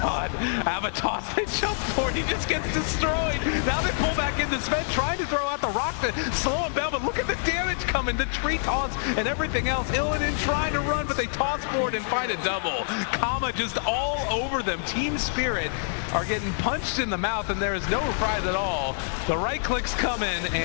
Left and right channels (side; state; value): right; silent; 61 dB below the other